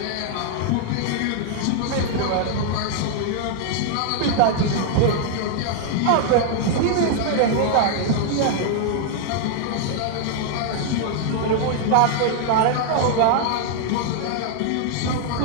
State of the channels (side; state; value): both; different; correlation -0.01